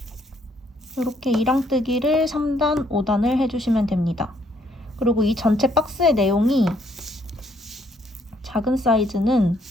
이렇게 2랑뜨기를 3단, 5단을 해주시면 됩니다. 그리고 이 전체 박스의 내용이 작은 사이즈는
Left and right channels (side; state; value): both; normal; correlation 0.69